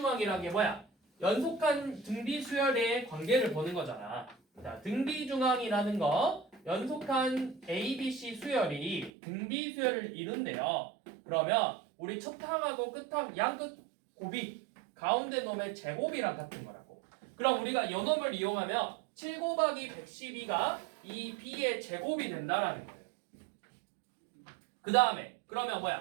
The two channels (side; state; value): left; drops out; at 9.1 s